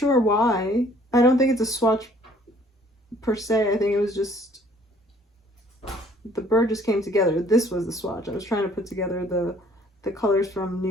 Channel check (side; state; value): both; normal; correlation 0.58